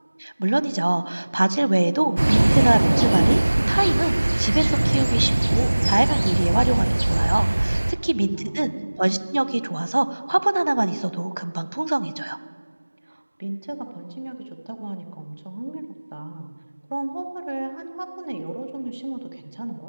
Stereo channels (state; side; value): inverted; both; correlation -1.00